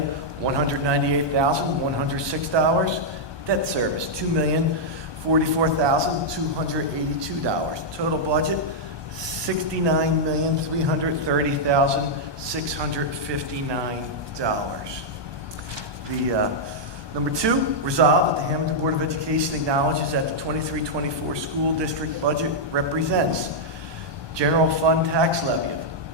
Debt Service, $2,044,282. Total budget, $69,330,659. Number 2, resolved that the Hammonton Board of Education acknowledges that the 23-24 school district budget represents general fund tax levy of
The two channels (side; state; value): left; late; 1.2 ms